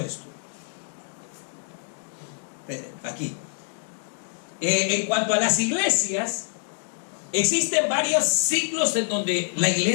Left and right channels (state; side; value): silent; right; 61 dB below the other